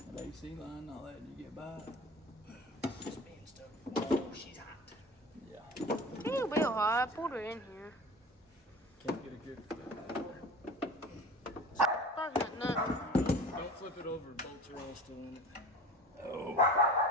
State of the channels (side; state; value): both; normal; correlation 0.38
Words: AC line, all that you get by. Spin stuff. Oh, she's hot. Yeah. It'll be hot. I pulled her in here. Can't get a good flip. Talking about nothing. Don't flip it over. Bolts are all still in it.